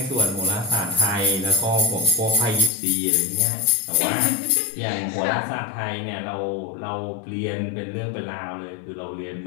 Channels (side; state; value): right; drops out; at 2.7 s